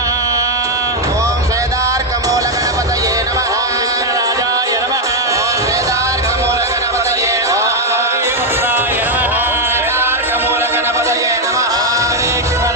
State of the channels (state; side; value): normal; both; correlation 0.02